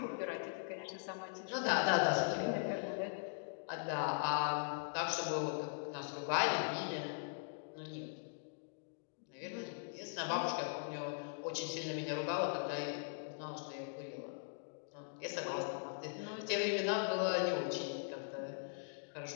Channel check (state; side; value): silent; right; digital silence